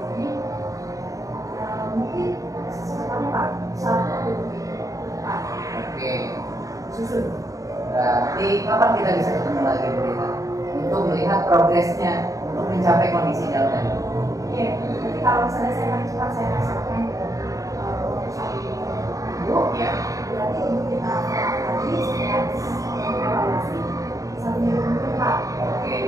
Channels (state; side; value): late; left; 0.16 ms